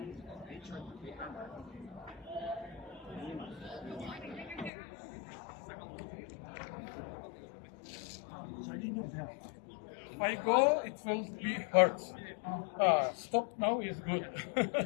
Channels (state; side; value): drops out; right; at 4.7 s